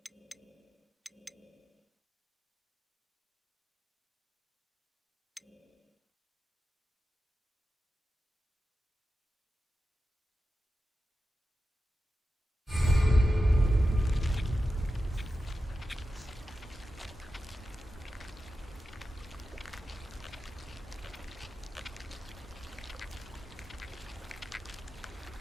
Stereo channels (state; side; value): normal; both; correlation 0.92